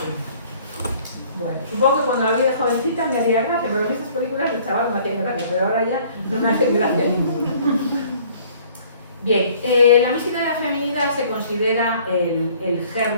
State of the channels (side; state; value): both; inverted; correlation -0.55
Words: Bueno, supongo que cuando la vi de jovencita me haría gracia, pero estas películas de chaval me hacían gracia, pero ahora ya no me hacen gracia ninguna. Bien, la mística de la feminidad se considera el